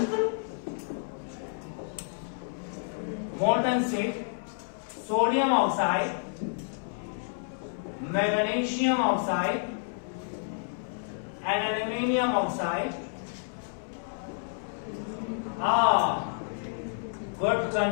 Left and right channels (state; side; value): silent; right; 58 dB below the other